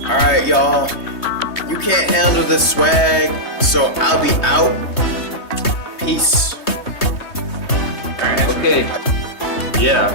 Alright, y'all. You can't handle the swag, so I'll be out. Peace. Okay.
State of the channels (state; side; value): late; right; 3.2 ms